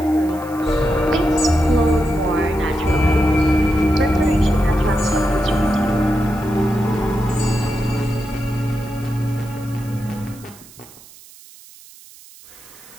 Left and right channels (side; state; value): right; noise; hiss, 22 dB below the sound